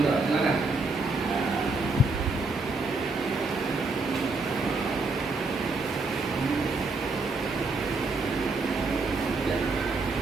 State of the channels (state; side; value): quieter; left; 3.4 dB